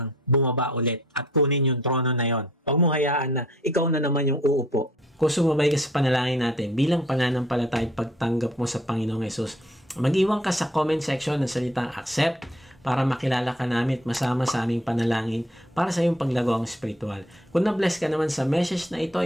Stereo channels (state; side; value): normal; both; correlation 0.59